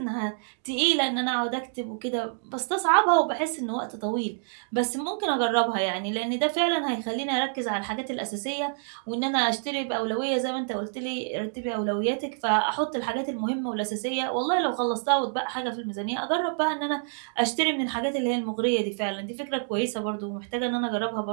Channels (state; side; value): silent; left; digital silence